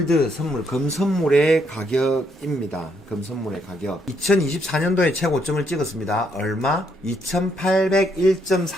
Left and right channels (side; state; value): both; normal; correlation 0.74